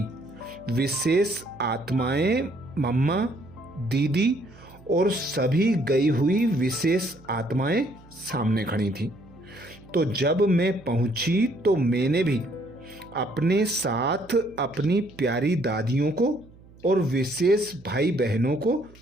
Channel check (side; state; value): right; noise; hum, 24 dB below the sound